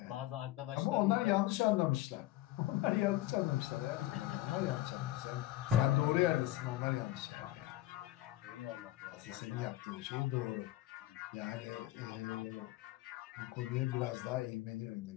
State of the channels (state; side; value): quieter; right; 15.8 dB